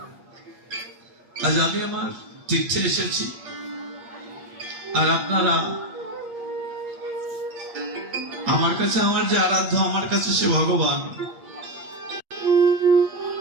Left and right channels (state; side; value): late; left; 8.6 ms